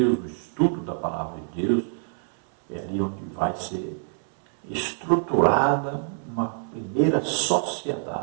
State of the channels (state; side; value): silent; left; digital silence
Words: o estudo da palavra de Deus. É ali onde vai ser estruturada uma primeira